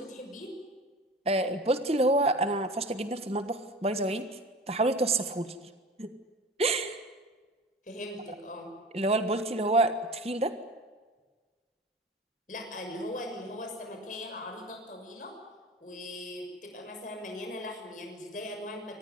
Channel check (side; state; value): both; normal; correlation 0.36